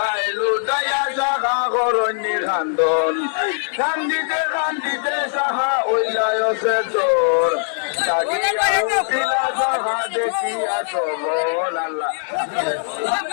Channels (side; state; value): right; silent; digital silence